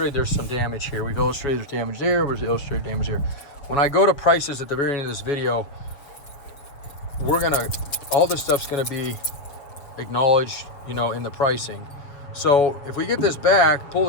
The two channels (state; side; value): late; right; 7.0 ms